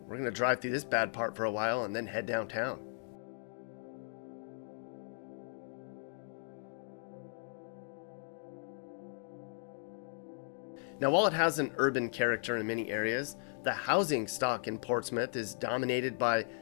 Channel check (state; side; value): silent; right; digital silence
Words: We're going to drive through this bad part for a while and then head downtown. Now, while it has an urban character in many areas, the housing stock in Portsmouth is dominated by